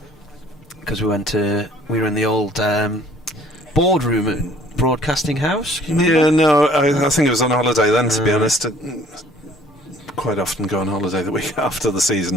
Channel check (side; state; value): both; normal; correlation 0.56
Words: Because we were in the old boardroom at Broadcasting House. Yeah, no, I think it was on holiday then, to be honest. Quite often go on holiday the week after the